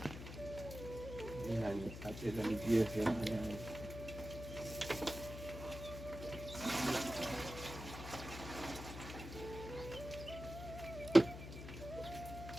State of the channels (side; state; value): left; noise; hum, 9 dB below the sound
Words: खाते झाली GSM आणि